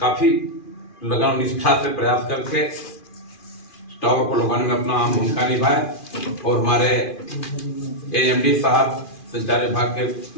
लगन और निष्ठा से प्रयास करके टावर को लगाने में अपना अहम भूमिका निभाए। और हमारे एएमडी साहब संचार विभाग के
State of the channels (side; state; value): right; late; 2.4 ms